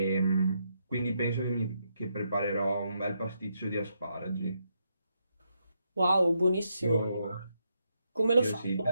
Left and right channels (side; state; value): both; inverted; correlation -0.79